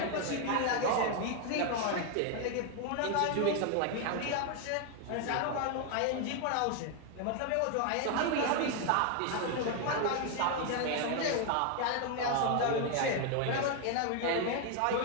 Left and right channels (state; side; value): different; both; correlation 0.01